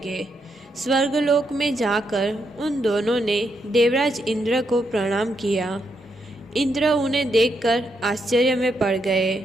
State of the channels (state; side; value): normal; both; correlation 0.79